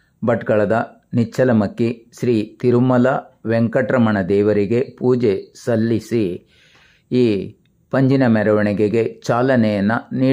ಭಟ್ಕಳದ ನಿಚ್ಚಲಮಕ್ಕಿ ಶ್ರೀ ತಿರುಮಲ ವೆಂಕಟರಮಣ ದೇವರಿಗೆ ಪೂಜೆ ಸಲ್ಲಿಸಿ ಈ ಪಂಜಿನ ಮೆರವಣಿಗೆಗೆ ಚಾಲನೆಯನ್ನು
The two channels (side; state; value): both; identical; correlation 1.00